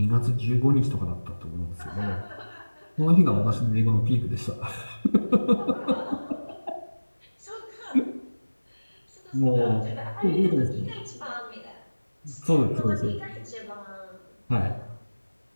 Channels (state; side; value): inverted; both; correlation -1.00